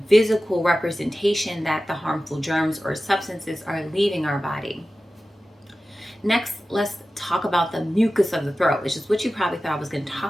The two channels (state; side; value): normal; both; correlation 0.95